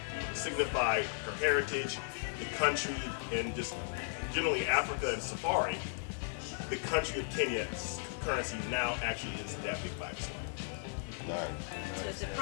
signify her heritage, the country, and just generally Africa and safari, the country of Kenya's currency now actually is that big 5%. So it's the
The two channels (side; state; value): right; silent; digital silence